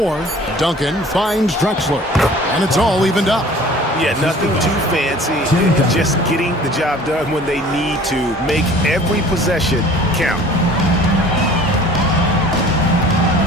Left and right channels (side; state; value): both; normal; correlation 0.48